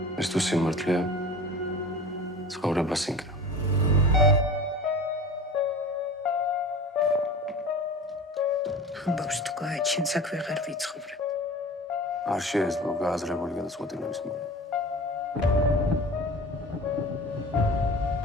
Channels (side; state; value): both; normal; correlation 0.37